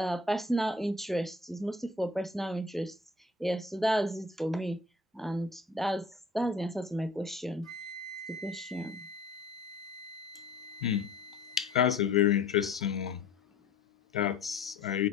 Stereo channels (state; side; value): quieter; right; 3.3 dB